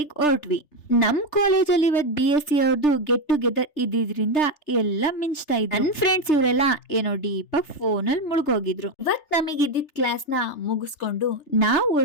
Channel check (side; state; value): right; late; 3.3 ms